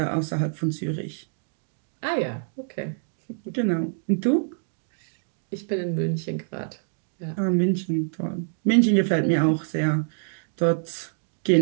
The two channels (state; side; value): silent; left; digital silence